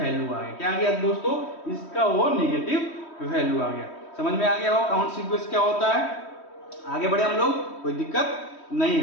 आ गया। क्या आ गया दोस्तों? इसका वो निगेटिव वैल्यू आ गया। समझ में आ गया हो काउंट सीक्वेंस क्या होता है? आगे बढ़े हम लोग, कोई दिक्कत नहीं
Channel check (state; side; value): late; right; 3.1 ms